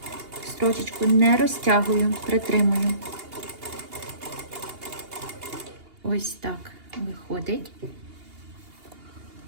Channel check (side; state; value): left; late; 2.8 ms